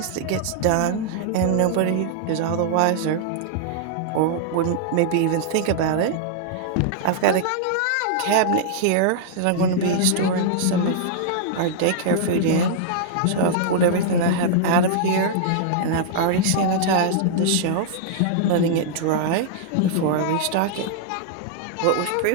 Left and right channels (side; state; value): both; different; correlation -0.01